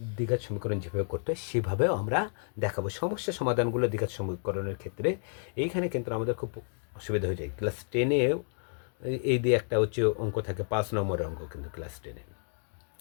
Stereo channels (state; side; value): silent; right; digital silence